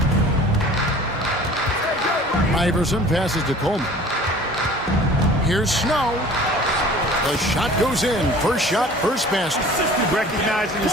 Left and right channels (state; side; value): normal; both; correlation 0.46